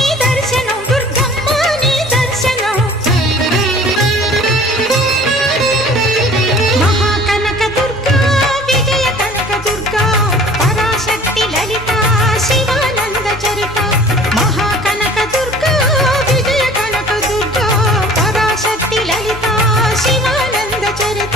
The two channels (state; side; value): normal; both; correlation 0.48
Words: దర్శనం దుర్గమ్మ నీ దర్శనం మహాకనక దుర్గా విజయ కనక దుర్గా పరాశక్తి లలిత శివానంద చరిత మహాకనక దుర్గా విజయ కనక దుర్గా పరాశక్తి లలిత శివానంద చరిత